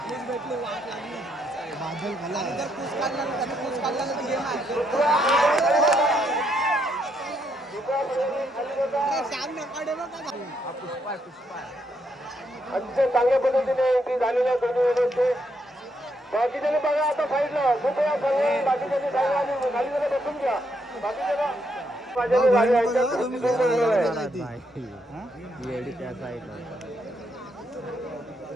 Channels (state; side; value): normal; both; correlation 0.76